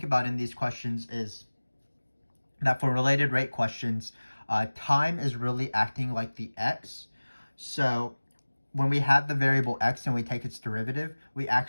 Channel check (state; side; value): inverted; both; correlation -1.00